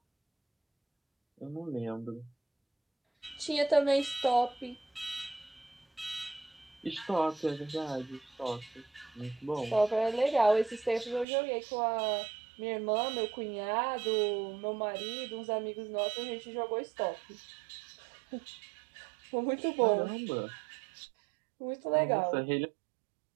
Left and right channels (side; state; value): left; drops out; at 11.2 s